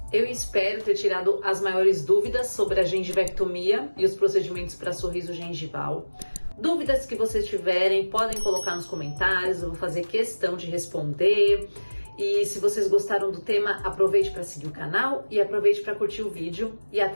Eu espero ter tirado as maiores dúvidas sobre a gengivectomia e os procedimentos para sorriso gengival. Dúvidas que vocês tiverem, podem colocar nos comentários, eu vou fazer questão de responder. E se vocês gostaram do tema, aproveite para seguir o canal e aproveite para curtir o vídeo. E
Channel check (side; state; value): both; inverted; correlation -1.00